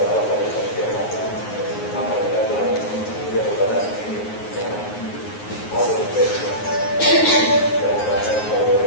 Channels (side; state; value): right; late; 9.5 ms